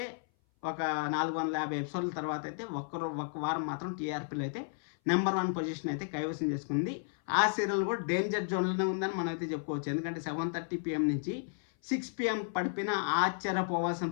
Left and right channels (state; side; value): silent; right; 56 dB below the other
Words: ఒక 450 ఎపిసోడ్ల తర్వాత అయితే ఒక్క వారం మాత్రం టీఆర్పీలో అయితే నెంబర్ 1 పొజిషన్ అయితే కైవసం చేసుకుంది. ఆ సీరియల్ కూడా డేంజర్ జోన్లోనే ఉందని మనం అయితే చెప్పుకోవచ్చు. ఎందుకంటే 7:30 PM నుంచి 6 PM పడిపోయినా ఆశ్చర్యపోవాల్సిన